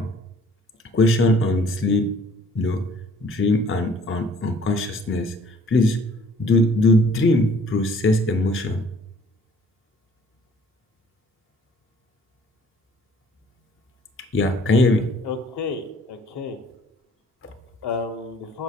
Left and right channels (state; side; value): normal; both; correlation 0.56